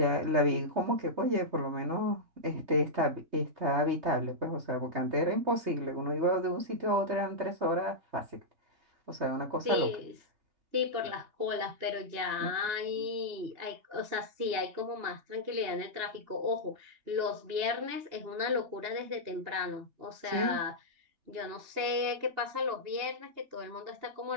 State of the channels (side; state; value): left; late; 2.9 ms